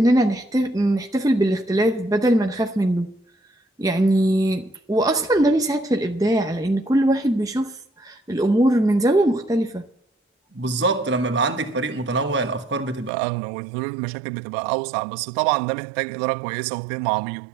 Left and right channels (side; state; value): left; drops out; at 13.1 s